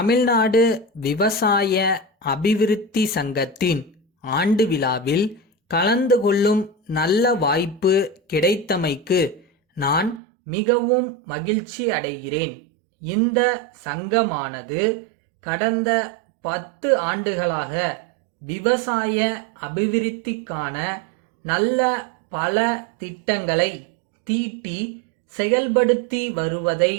விவசாய அபிவிருத்தி சங்கத்தின் ஆண்டு விழாவில் கலந்து கொள்ளும் நல்ல வாய்ப்பு கிடைத்தமைக்கு நான் மிகவும் மகிழ்ச்சி அடைகிறேன். இந்த சங்கமானது கடந்த 10 ஆண்டுகளாக விவசாய அபிவிருத்திக்கான நல்ல பல திட்டங்களை தீட்டி செயல்படுத்தி வருவதை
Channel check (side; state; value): left; drops out; at 10.2 s